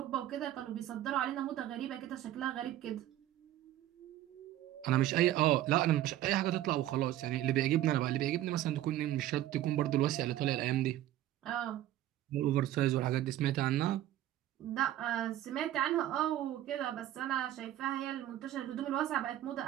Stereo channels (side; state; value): left; quieter; 13.3 dB